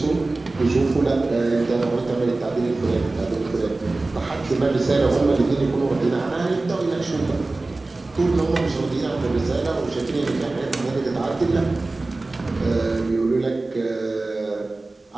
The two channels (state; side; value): quieter; left; 3.2 dB